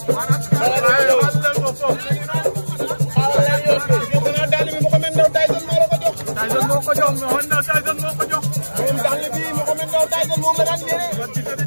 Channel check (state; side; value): inverted; both; correlation -1.00